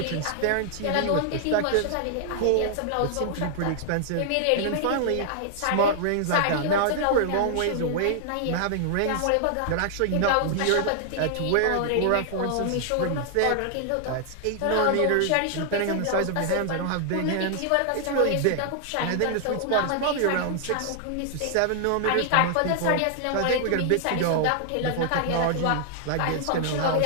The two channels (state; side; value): different; both; correlation 0.00